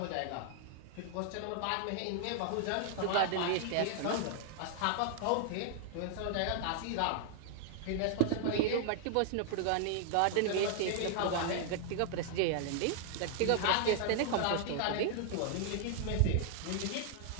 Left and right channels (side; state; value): both; different; correlation 0.00